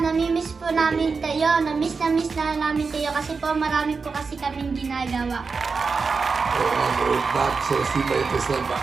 Namimiss po namin kayo. Namiss na namin kayo kasi po marami po kasi kaming ginagawa. We're back sa Sibaytes na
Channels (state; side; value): quieter; left; 4.8 dB